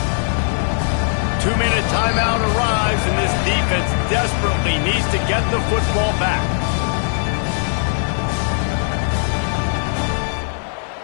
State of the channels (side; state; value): right; silent; 66 dB below the other